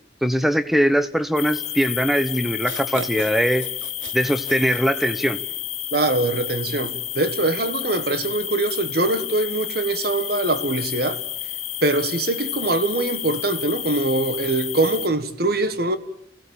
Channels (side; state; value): both; normal; correlation 0.42